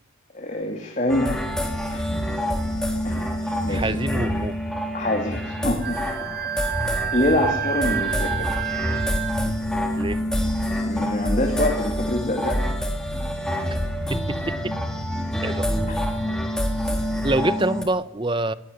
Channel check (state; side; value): normal; both; correlation 0.62